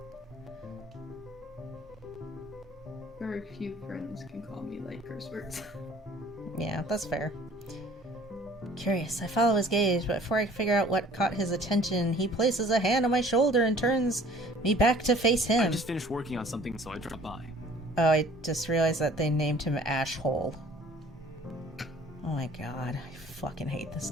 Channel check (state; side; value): normal; both; correlation 0.52